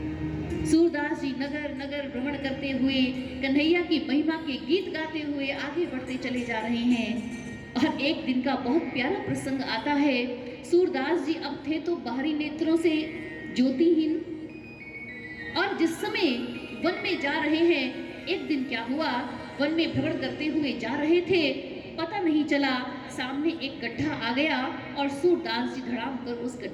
सूरदास जी नगर नगर भ्रमण करते हुए, कन्हैया की महिमा के गीत गाते हुए आगे बढ़ते चले जा रहे हैं। और एक दिन का बहुत प्यारा प्रसंग आता है। सूरदास जी अब थे तो बाहरी नेत्रों से ज्योतिहीन, और जिस समय वन में जा रहे हैं, एक दिन क्या हुआ, वन में भ्रमण करते हुए जा रहे थे, पता नहीं चला, सामने एक गड्ढा आ गया और सूरदास जी धड़ाम कर उस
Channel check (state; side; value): identical; both; correlation 1.00